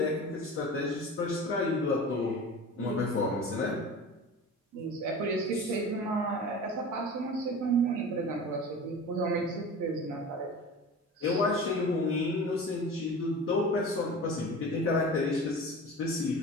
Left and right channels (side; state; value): both; normal; correlation 0.35